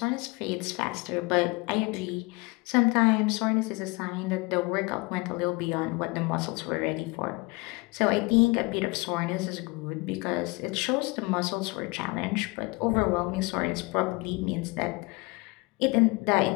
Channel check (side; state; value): right; quieter; 26.2 dB